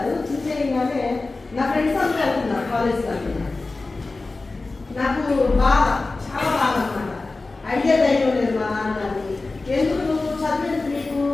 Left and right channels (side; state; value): right; quieter; 3.5 dB